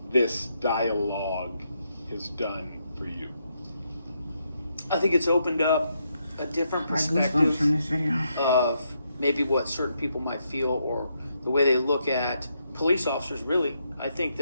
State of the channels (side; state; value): both; inverted; correlation -0.79